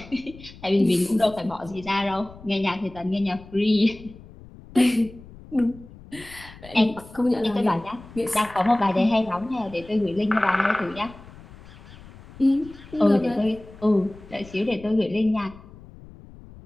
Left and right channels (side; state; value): left; noise; rumble, 19 dB below the sound